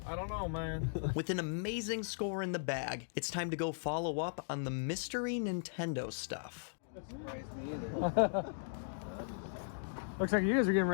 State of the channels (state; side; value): silent; right; digital silence